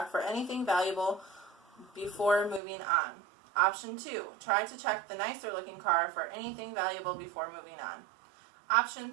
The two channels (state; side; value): drops out; left; at 2.6 s